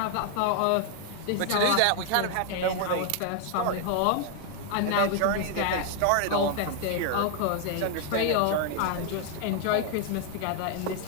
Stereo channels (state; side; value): different; both; correlation 0.00